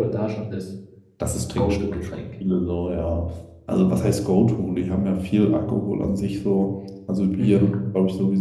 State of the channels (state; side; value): identical; both; correlation 1.00